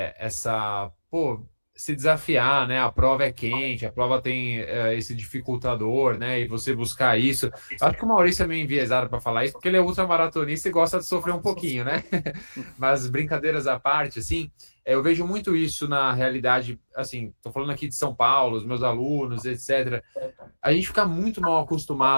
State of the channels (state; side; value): inverted; both; correlation -1.00